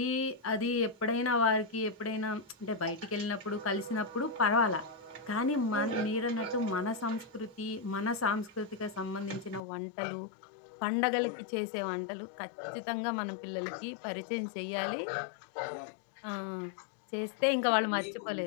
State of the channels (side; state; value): right; drops out; at 9.6 s